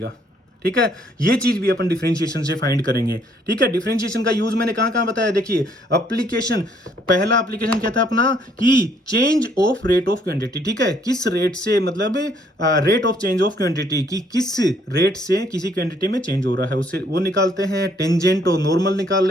ठीक है। ये चीज भी अपन डिफरेंशिएशन से फाइंड करेंगे, ठीक है। डिफरेंशिएशन का यूज मैंने कहां कहां बताया, देखिए एप्लीकेशन, पहला एप्लीकेशन क्या था अपना कि change of rate of quantity, ठीक है। किस रेट से, मतलब rate of change of quantity की किस रेट से किसी क्वांटिटी में चेंज हो रहा है, उससे वो निकालते हैं। टेंजेंट और नॉर्मल निकाल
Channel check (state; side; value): normal; both; correlation 0.66